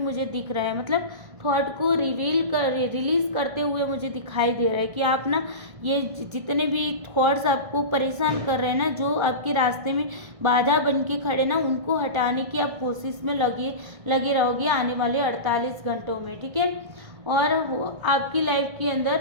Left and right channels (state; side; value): late; left; 1.6 ms